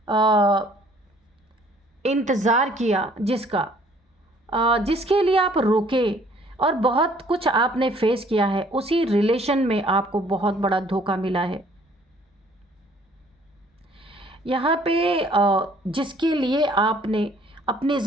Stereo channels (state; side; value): normal; both; correlation 0.58